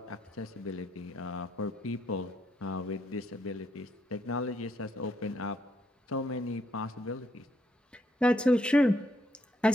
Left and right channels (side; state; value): both; normal; correlation 0.74